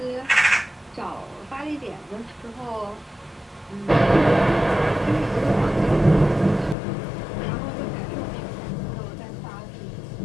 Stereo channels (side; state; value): right; drops out; at 6.8 s